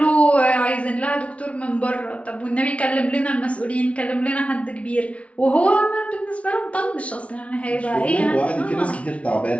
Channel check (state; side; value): late; right; 0.063 ms